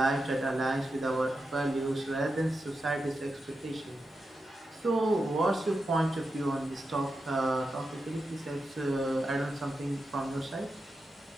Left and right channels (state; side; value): normal; both; correlation 0.89